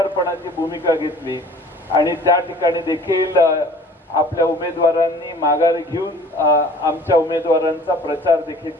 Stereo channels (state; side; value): normal; both; correlation 0.49